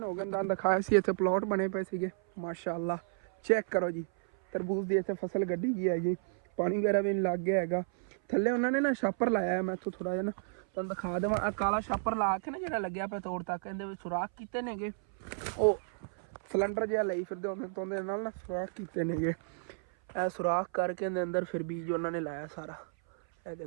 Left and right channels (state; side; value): silent; left; 56 dB below the other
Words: ਹੋ ਗਏ ਤਾਂ ਦਿਖਾਇਆ ਸੀ, ਇੱਥੇ ਪਲਾਟ ਬਣੇ ਪਏ ਸੀਗੇ ਮਾਸ਼ਾਅੱਲਾ। ਚੈੱਕ ਕਰੋ ਜੀ, ਤਰਬੂਜ਼ ਦੀ ਇੱਥੇ ਫਸਲ ਗੱਡੀ ਗਈ ਹੈਗੀ, ਪਾਣੀ ਵਗੈਰਾ ਵੀ ਲੱਗ ਗਿਆ ਹੈਗਾ। ਥੱਲੇ ਉਹਨਾਂ ਨੇ ਨਾ ਛਾਪਰ ਲਾਇਆ ਹੈ, ਮੈਂ ਇੱਥੋਂ ਥੋੜ੍ਹਾ ਜਿਹਾ ਨਾ ਤੁਹਾਨੂੰ ਦਿਖਾ ਦੇਵਾਂ। ਆਹ ਕਾਲਾ ਛਾਪਰ ਲਾ ਕੇ ਨਾ ਜਿਹੜਾ ਲੱਗਿਆ ਪਿਆ ਤੋੜ ਤੱਕ, ਇਹਦੇ ਵਿੱਚ ਸੁਰਾਖ ਕੀਤੇ ਨੇਗੇ, ਉਹ ਸਿਲੰਡਰ ਜਿਹਾ ਲਈ ਫਿਰਦੇ ਉਹਦੇ ਨਾਲ ਨਾ ਸੁਰਾਖ ਕੀਤੇ ਨੇਗੇ। ਇਹ ਸੁਰਾਖ ਕਰਕੇ ਇਹਦੇ ਅੰਦਰ ਫਿਰ ਬੀਜ ਉਹਨਾਂ ਨੇ ਲਾਇਆ ਸਾਰਾ। ਇਹ